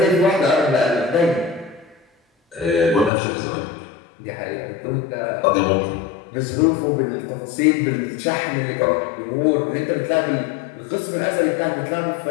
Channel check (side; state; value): right; drops out; at 3.1 s